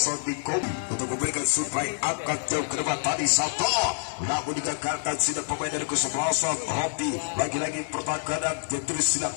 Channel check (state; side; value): silent; right; 60 dB below the other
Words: di Kobi untuk memberikan supply angkat jauh ke depan tadi Sato, namun digagalkan sidang pemain dari kesebelasan Rocky. Lagi-lagi pertahanan yang terus